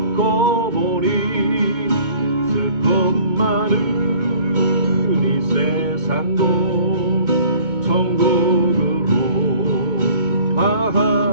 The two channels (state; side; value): late; left; 2.2 ms